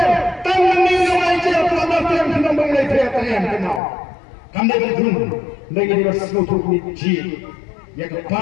Tangan ni orang itu apa yang kita mengenai player yang kenal. Kami berdua lagi di sesuatu ni yang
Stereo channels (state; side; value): drops out; right; at 3.8 s